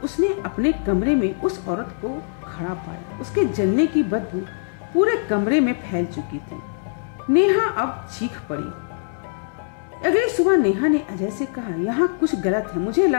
अपने कमरे में उस औरत को खड़ा पाया। उसके जलने की बदबू पूरे कमरे में फैल चुकी थी। नेहा अब चीख पड़ी। अगली सुबह नेहा ने अजय से कहा, यहाँ कुछ गलत है, मुझे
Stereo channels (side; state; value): right; silent; digital silence